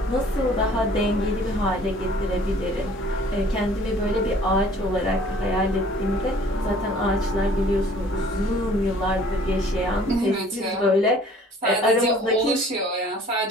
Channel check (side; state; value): both; normal; correlation 0.53